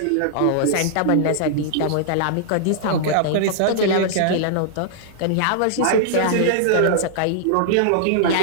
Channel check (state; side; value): different; both; correlation -0.01